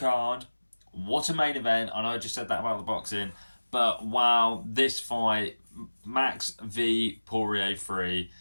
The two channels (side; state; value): both; inverted; correlation -1.00